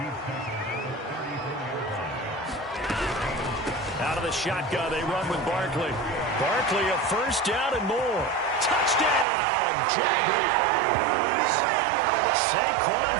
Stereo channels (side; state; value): left; drops out; at 9.2 s